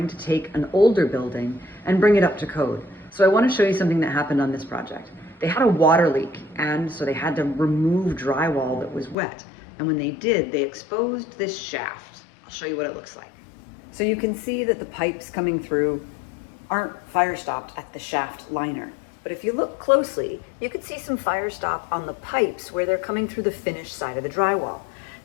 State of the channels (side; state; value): right; drops out; at 9.2 s